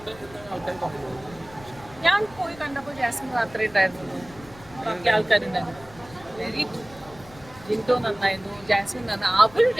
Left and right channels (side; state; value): left; noise; rumble, 21 dB below the sound